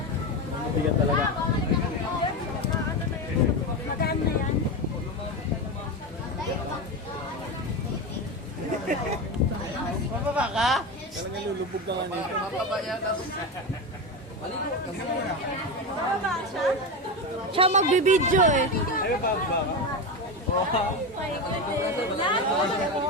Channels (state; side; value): normal; both; correlation 0.18